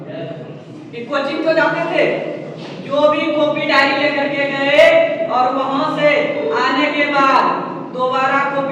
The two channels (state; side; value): identical; both; correlation 1.00